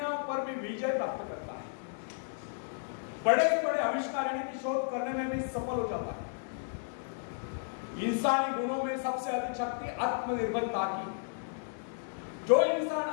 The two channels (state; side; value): silent; right; 56 dB below the other